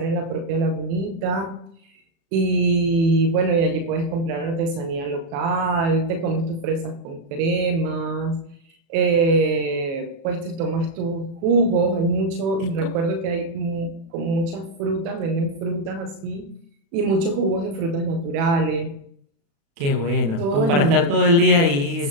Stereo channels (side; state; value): left; late; 36 ms